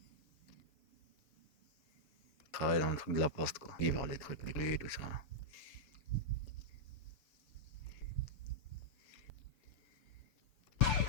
Travailler dans le truc de la poste quoi. Vivre les trucs, les clés, tout ça.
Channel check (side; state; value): right; late; 7.0 ms